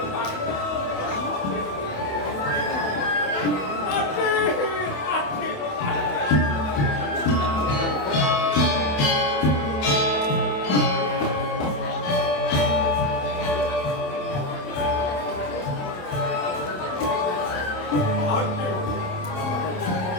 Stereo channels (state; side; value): late; right; 27 ms